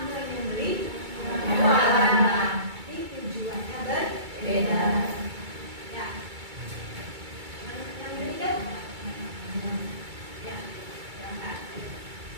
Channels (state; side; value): late; left; 2.3 ms